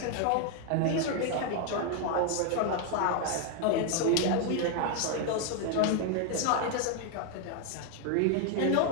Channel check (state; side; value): different; both; correlation 0.01